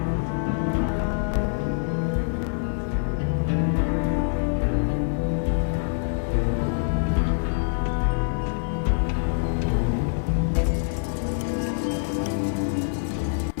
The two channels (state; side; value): silent; right; digital silence